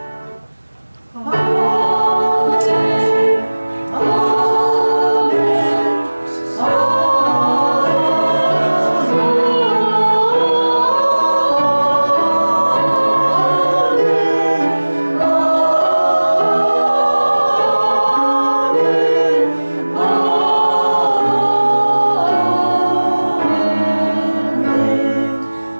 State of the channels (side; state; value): both; inverted; correlation -1.00